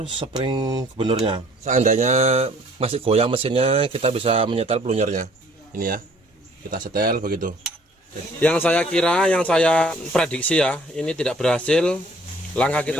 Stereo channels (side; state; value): both; normal; correlation 0.57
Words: spring gubernurnya. Seandainya masih goyang mesinnya, kita bisa menyetel pelunyernya. Ini ya, kita setel begitu. Yang saya kira, yang saya prediksi ya, ini tidak berhasil. Langkah